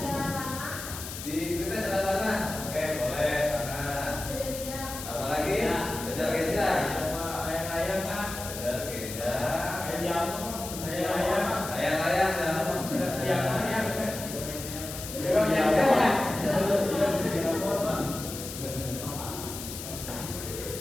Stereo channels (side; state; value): left; noise; hiss, 9 dB below the sound